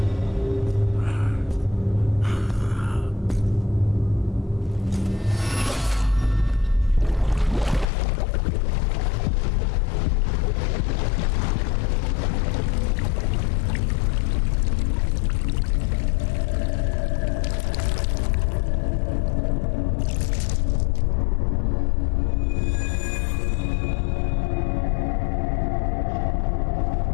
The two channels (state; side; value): drops out; right; at 7.9 s